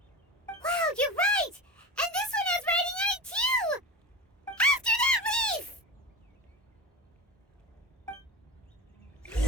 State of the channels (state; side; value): normal; both; correlation 0.26